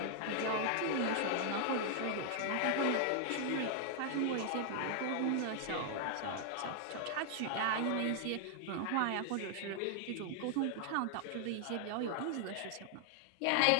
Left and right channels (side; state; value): both; different; correlation 0.00